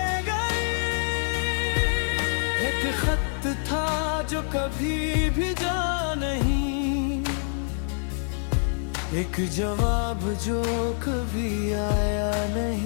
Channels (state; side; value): silent; right; 56 dB below the other